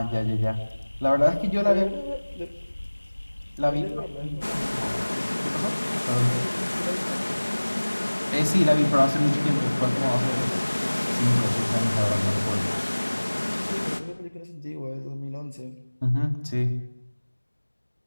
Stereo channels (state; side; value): inverted; both; correlation -1.00